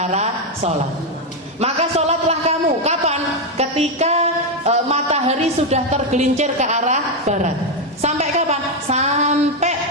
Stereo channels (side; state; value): both; normal; correlation 0.05